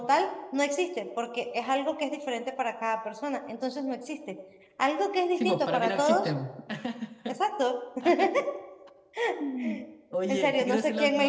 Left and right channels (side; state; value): both; identical; correlation 1.00